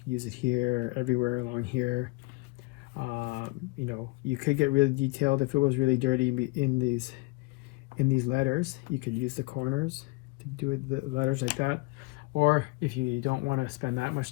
use it here, everywhere along here. You know, you could get really detailed if it was really dirty in these letters. You could use the corners to do it, the letters like that. Or if you don't want to spend that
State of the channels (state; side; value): quieter; right; 25.2 dB